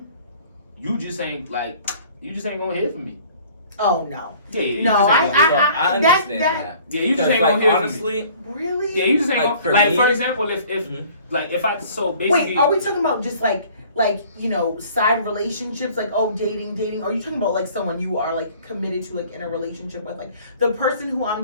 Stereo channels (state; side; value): inverted; both; correlation -0.52